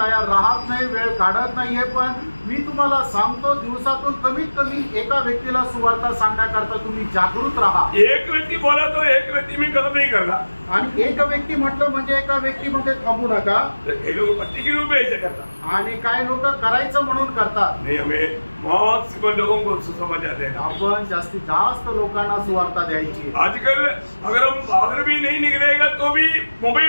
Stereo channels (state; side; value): inverted; both; correlation -1.00